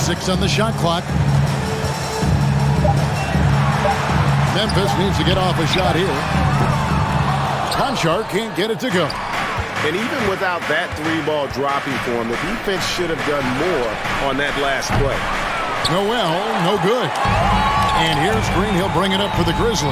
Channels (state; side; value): identical; both; correlation 1.00